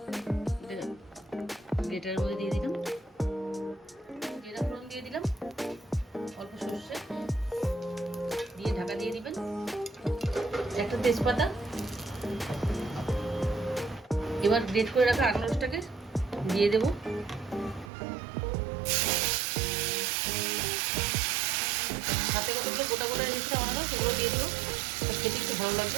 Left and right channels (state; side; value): drops out; left; at 17.9 s